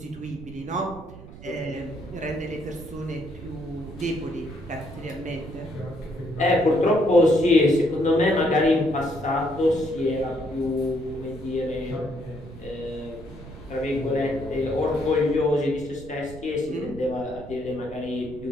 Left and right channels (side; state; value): right; noise; rumble, 16 dB below the sound